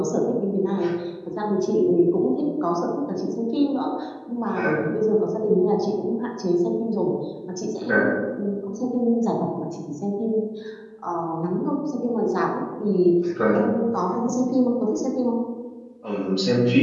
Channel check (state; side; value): identical; both; correlation 1.00